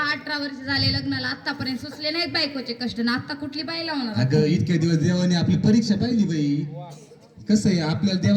18 वर्ष झाले लग्नाला, आतापर्यंत सुचले नाहीत बायकोचे कष्ट ना. आता कुठली बाई लावणार? अगं इतक्या दिवस देवाने आपली परीक्षा पाहिली बाई. कसं आहे, आपल्याला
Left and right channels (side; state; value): both; identical; correlation 1.00